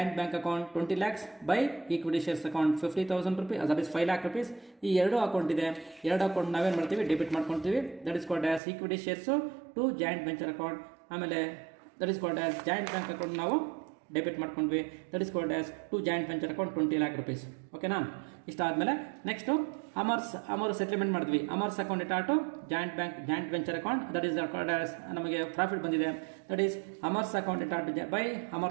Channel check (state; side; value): drops out; left; at 8.6 s